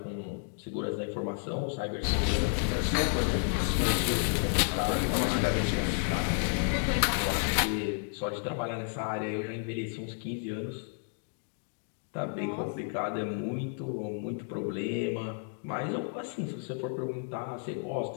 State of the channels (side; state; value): right; silent; 57 dB below the other